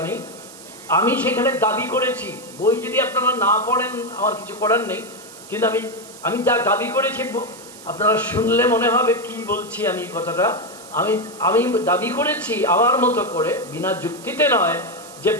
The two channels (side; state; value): right; noise; hiss, 18 dB below the sound